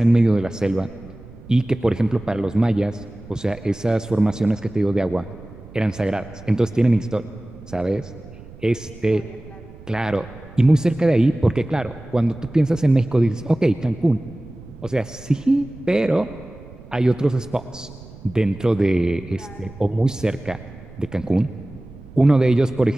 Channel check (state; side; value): noise; right; rumble, 19 dB below the sound